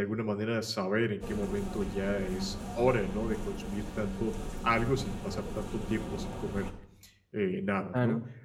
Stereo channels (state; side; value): identical; both; correlation 1.00